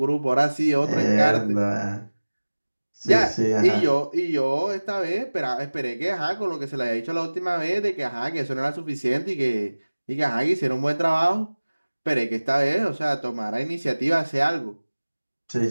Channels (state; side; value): inverted; both; correlation -1.00